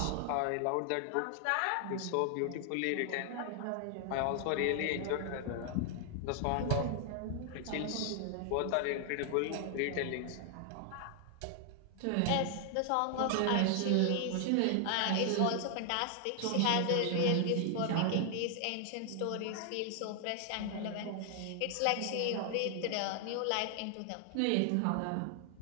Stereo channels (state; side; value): different; both; correlation 0.00